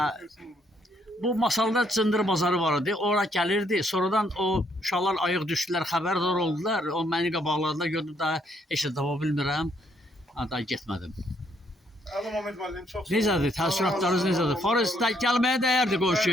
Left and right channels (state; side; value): normal; both; correlation 0.71